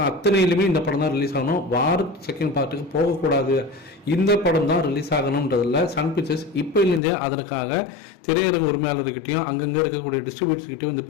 அத்தனையிலுமே இந்த படம் தான் ரிலீஸ் ஆகணும், வார் செகண்ட் பார்ட்டுக்கு போகக்கூடாது, இந்த படம் தான் ரிலீஸ் ஆகணுன்றதில் சன் பிக்சர்ஸ் இப்போலேருந்தே அதற்காக திரையரங்கு உரிமையாளர்கிட்டையும் அங்கங்கே இருக்கக்கூடிய டிஸ்ட்ரிபியூட்டர்ஸ்கிட்டையும் இந்த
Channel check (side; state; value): right; drops out; at 7.0 s